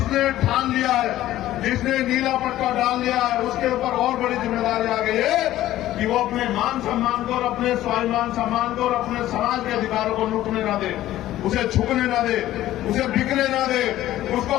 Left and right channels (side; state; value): right; quieter; 14.2 dB